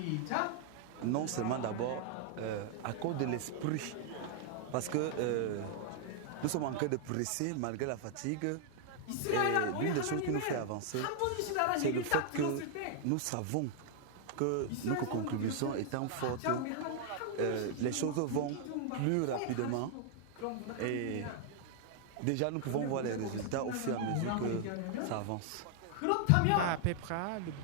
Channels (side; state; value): both; different; correlation 0.00